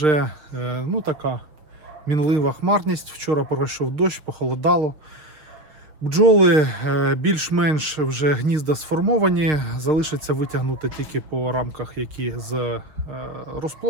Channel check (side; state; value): left; late; 6.5 ms